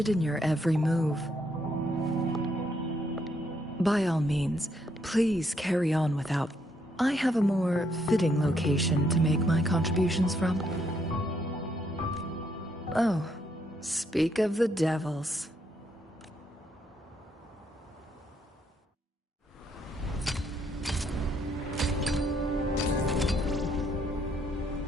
in your every move. By all means, please carry on without. I have a more fitting location to make my contributions from. Oh, speak of the devils.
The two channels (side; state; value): both; normal; correlation 0.73